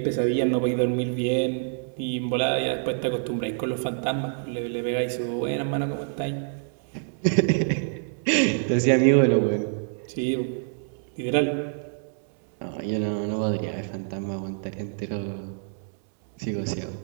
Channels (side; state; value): left; silent; digital silence